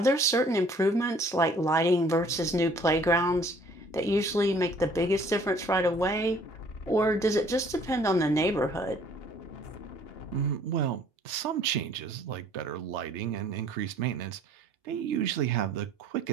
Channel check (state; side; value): normal; both; correlation 0.57